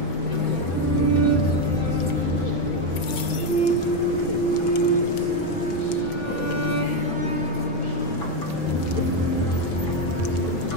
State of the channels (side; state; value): right; late; 6.1 ms